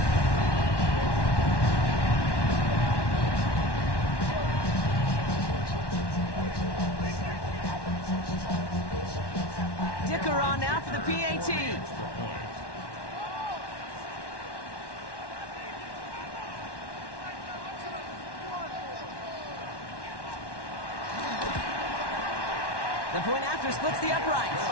kicker on now for the PAT. The point after splits the uprights.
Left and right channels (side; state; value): right; late; 1.1 ms